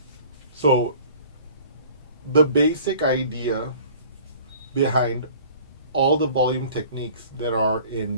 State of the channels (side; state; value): both; inverted; correlation -0.48